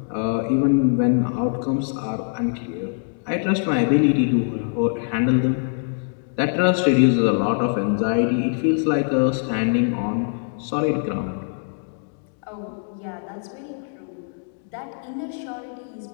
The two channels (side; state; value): right; silent; digital silence